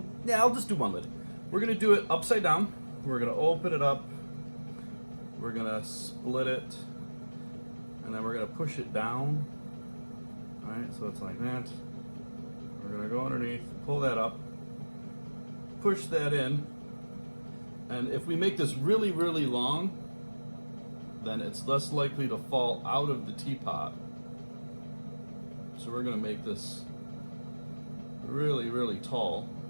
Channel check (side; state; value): both; inverted; correlation -1.00